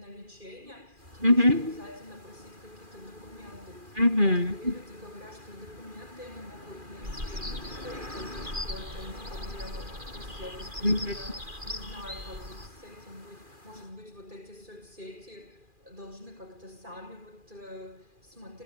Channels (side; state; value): left; late; 2.4 ms